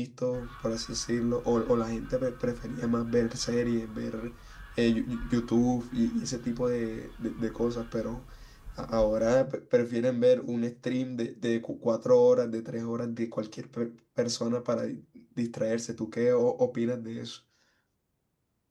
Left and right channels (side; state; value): both; identical; correlation 1.00